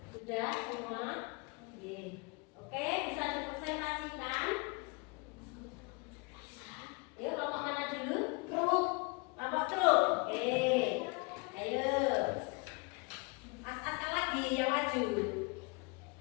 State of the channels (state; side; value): quieter; right; 29.5 dB